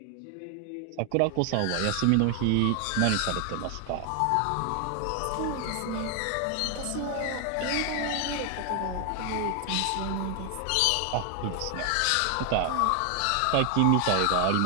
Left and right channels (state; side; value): different; both; correlation 0.00